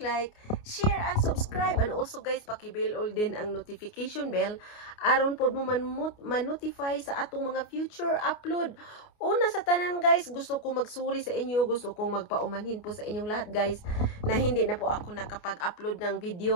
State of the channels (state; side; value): late; right; 29 ms